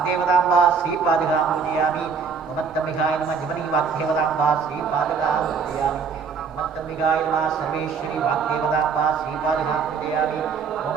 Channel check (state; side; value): quieter; left; 5.8 dB